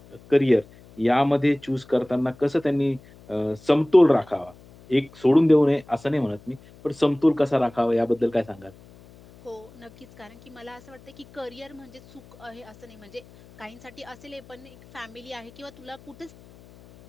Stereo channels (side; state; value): left; noise; hum, 24 dB below the sound